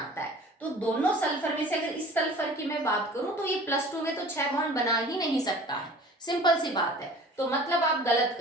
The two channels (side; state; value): both; normal; correlation 0.45